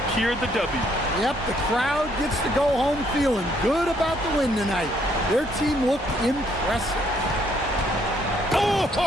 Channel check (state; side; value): normal; both; correlation 0.68